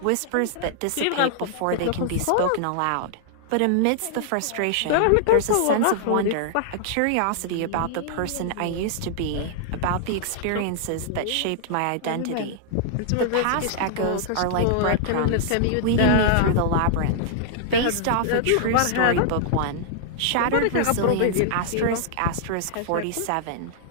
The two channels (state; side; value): different; both; correlation -0.01